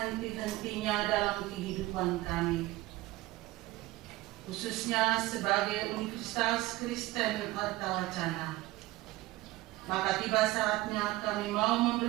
dalam kehidupan kami, khususnya sebagai Universitas Kristen Artawacana, maka tiba saatnya kami mau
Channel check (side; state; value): left; quieter; 18.6 dB